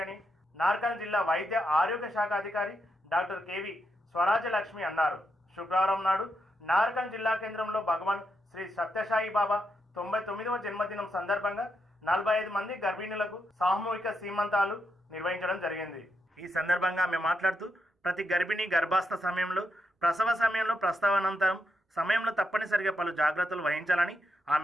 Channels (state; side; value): normal; both; correlation 0.82